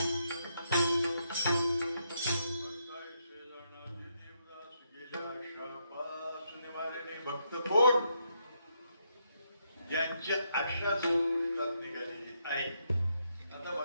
भक्त कोण ज्यांची आशा संपुष्टात निघालेली आहे. आता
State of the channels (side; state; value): both; inverted; correlation -0.78